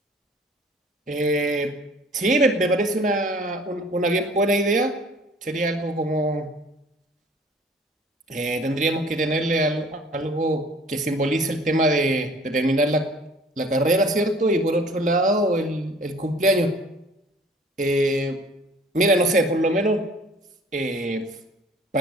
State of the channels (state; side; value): normal; both; correlation 0.51